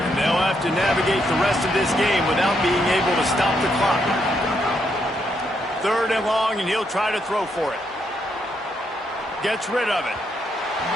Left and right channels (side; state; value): both; normal; correlation 0.77